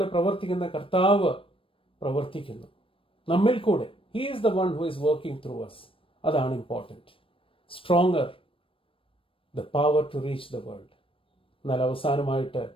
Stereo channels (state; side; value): late; right; 0.26 ms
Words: പ്രവർത്തിക്കുന്ന കർത്താവ് പ്രവർത്തിക്കുന്നു നമ്മിൽ കൂടെ. He is the one who is working through us. അതാണ് important. Stronger, the power to reach the world. എന്നാൽ അവസാനമായിട്ട്